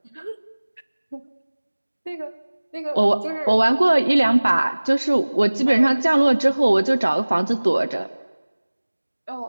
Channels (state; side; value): inverted; both; correlation -1.00